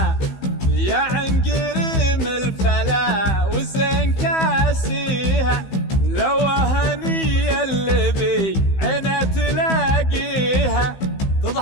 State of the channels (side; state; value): right; late; 15 ms